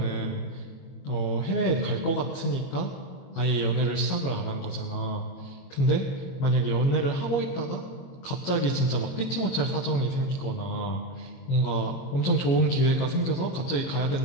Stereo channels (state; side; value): late; right; 22 ms